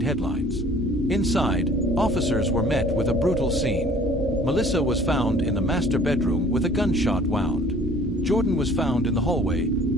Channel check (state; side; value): normal; both; correlation 0.53